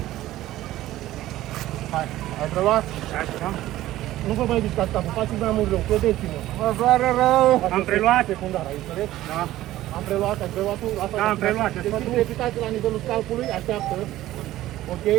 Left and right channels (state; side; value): quieter; left; 15.1 dB